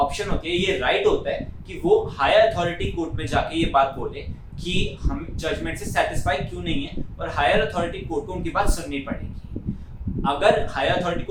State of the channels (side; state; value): both; identical; correlation 1.00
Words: होती है, ये राइट होता है कि वो हायर अथॉरिटी कोर्ट में जाके ये बात बोले कि हम जजमेंट से सेटिस्फाई क्यों नहीं है और हायर अथॉरिटी कोर्ट को उनकी बात सुननी पड़ेगी। अगर हायर अथॉरिटी